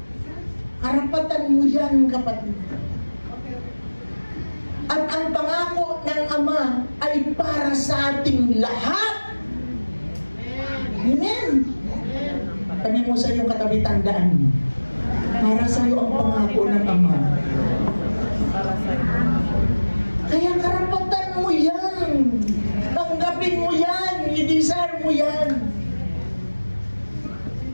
Karapatan mo yan, kapatid. At ang pangako ng Ama ay para sa ating lahat. Amen. Sabi mo sa iyong katabi, tandaan. Para sa iyo ang pangako ng Ama. Kaya karapatan mo yan. Tanggapin mo yan. I-desire mo yan.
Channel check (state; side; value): inverted; both; correlation -1.00